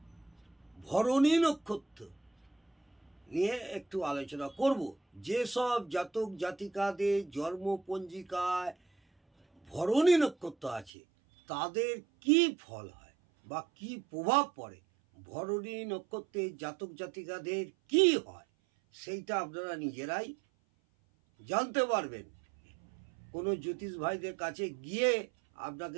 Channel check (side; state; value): left; drops out; at 10.9 s